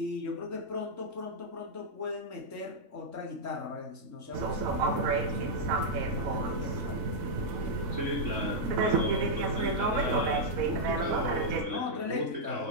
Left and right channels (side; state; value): left; late; 4.1 ms